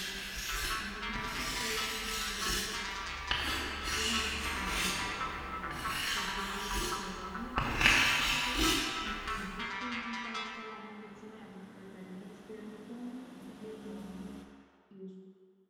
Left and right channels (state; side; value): identical; both; correlation 1.00